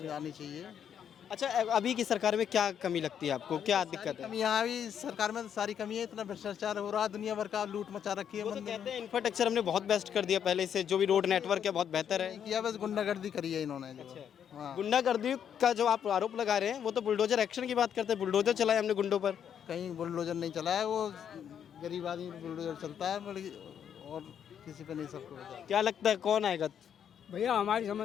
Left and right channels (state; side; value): quieter; right; 8.6 dB